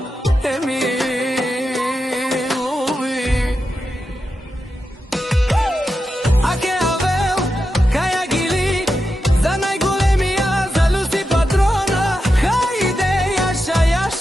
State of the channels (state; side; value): normal; both; correlation 0.89